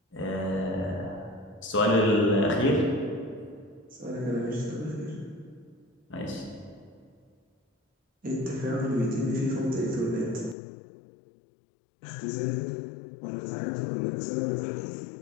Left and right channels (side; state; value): right; drops out; at 10.6 s